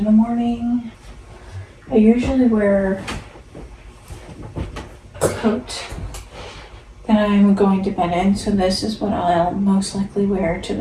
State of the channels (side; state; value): both; identical; correlation 1.00